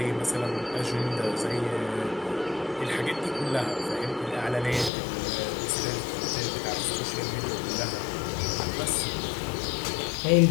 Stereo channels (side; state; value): right; drops out; at 4.9 s